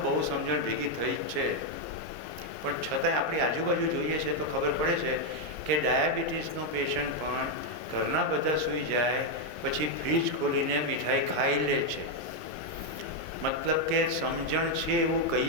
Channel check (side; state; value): left; late; 2.9 ms